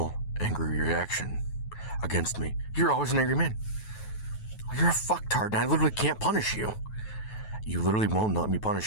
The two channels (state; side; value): late; right; 9.3 ms